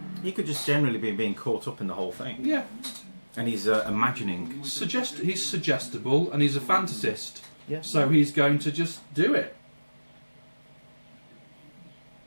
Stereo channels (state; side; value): inverted; both; correlation -1.00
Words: He could just generally be being caught up in the whole thing. Yeah. And he's imagining. He's suggestible and he's a fantasist. Yeah. So he's going to just do it.